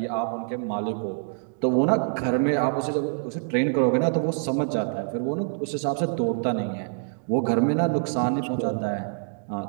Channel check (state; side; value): silent; left; digital silence